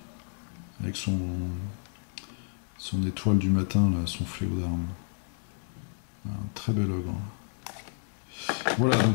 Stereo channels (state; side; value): silent; right; 57 dB below the other